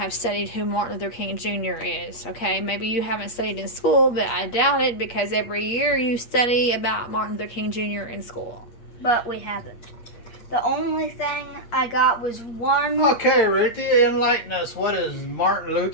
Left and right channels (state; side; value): late; right; 8.5 ms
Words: studied who Martin Luther King Jr. is, okay? Maybe you haven't studied in school, but I doubt it because every year you study about Martin Luther King Jr. in school. But we haven't. The only thing I got was one... Okay, Ruthie, enlighten us. What is Martin